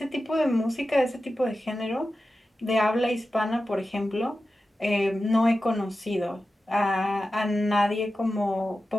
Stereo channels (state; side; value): normal; both; correlation 0.93